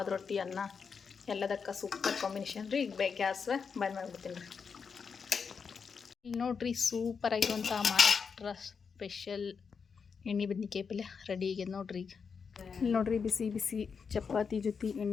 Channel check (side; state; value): right; quieter; 5.9 dB